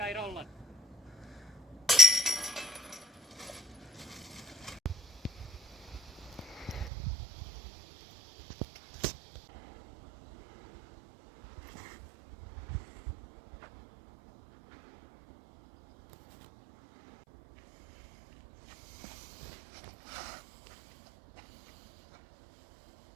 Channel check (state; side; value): drops out; left; at 6.9 s